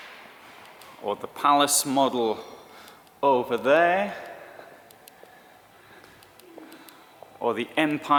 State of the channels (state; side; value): identical; both; correlation 1.00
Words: or the palace model over there, or the